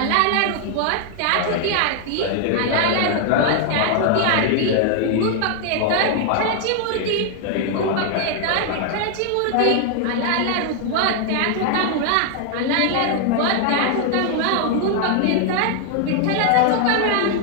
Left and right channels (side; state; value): both; different; correlation 0.00